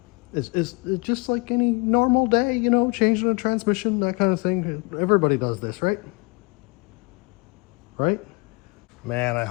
It's just like any normal day, you know, changing a transmission, that kind of thing. Everybody does this, right? Right? Man, I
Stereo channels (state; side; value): quieter; right; 28.5 dB